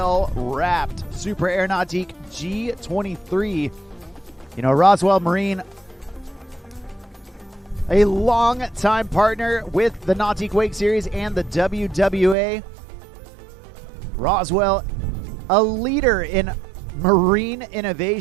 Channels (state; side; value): drops out; left; at 12.4 s